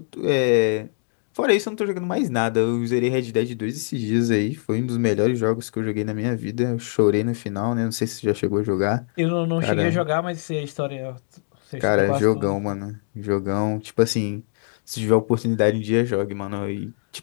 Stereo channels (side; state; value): right; silent; digital silence